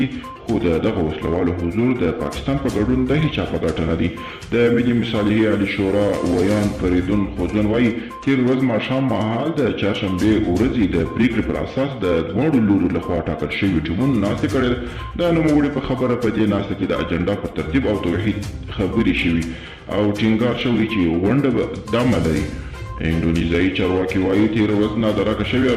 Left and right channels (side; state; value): both; identical; correlation 1.00